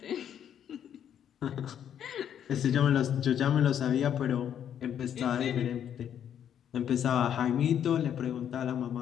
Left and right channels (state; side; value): quieter; right; 9.4 dB